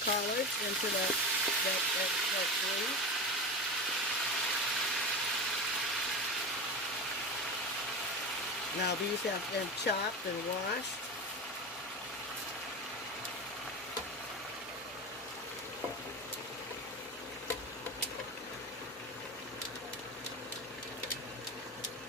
into that grease. Now these have been chopped and washed.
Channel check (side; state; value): both; normal; correlation 0.24